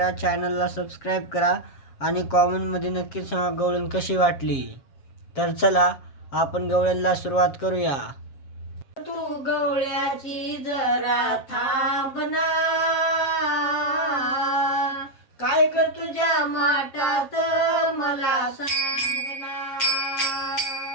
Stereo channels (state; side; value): late; right; 7.3 ms